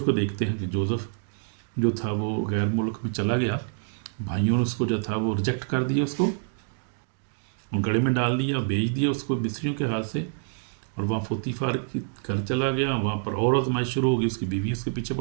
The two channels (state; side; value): silent; left; 60 dB below the other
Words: کو دیکھتے ہیں کہ جوزف جو تھا وہ غیر ملک میں چلا گیا. بھائیوں نے اس کو جو تھا وہ ریجیکٹ کر دیا، اس کو گڑھے میں ڈال دیا، بیچ دیا اس کو مصریوں کے ہاتھ سے. اور وہاں فوتیفار کی گھر چلا گیا. وہاں پر اور آزمائش شروع ہو گئی. اس کی بیوی اس کے پیچھے